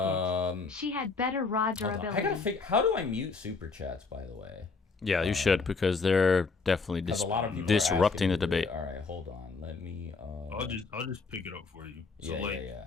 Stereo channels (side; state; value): right; quieter; 4.4 dB